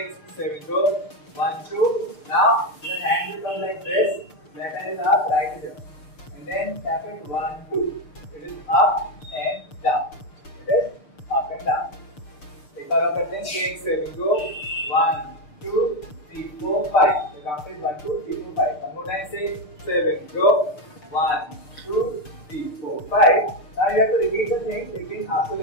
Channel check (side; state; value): right; late; 6.7 ms